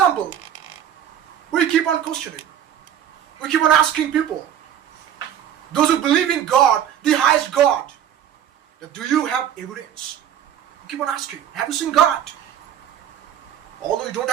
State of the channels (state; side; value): quieter; left; 9.9 dB